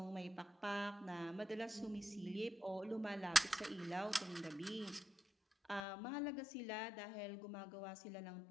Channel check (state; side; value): drops out; right; at 5.9 s